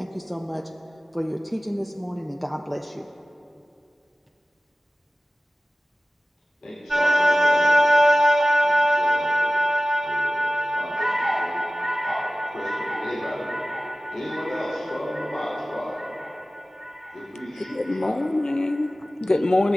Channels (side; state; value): both; normal; correlation 0.96